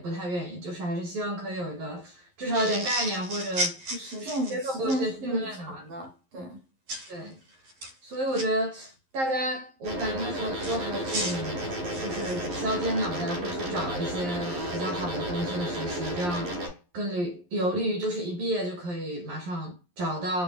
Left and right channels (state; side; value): late; left; 11 ms